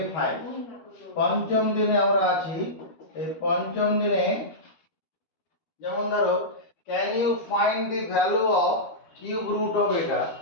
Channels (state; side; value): late; right; 12 ms